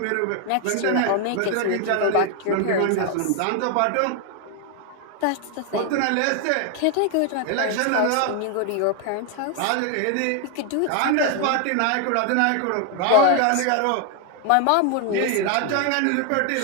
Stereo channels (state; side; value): different; both; correlation 0.00